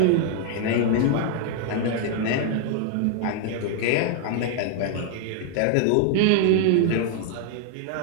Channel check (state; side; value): different; both; correlation 0.00